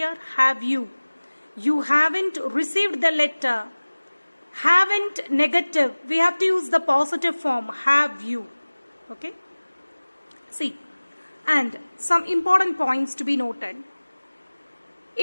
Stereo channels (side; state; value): both; inverted; correlation -1.00